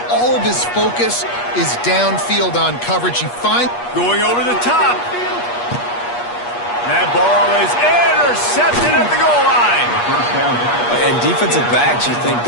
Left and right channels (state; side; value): late; right; 8.4 ms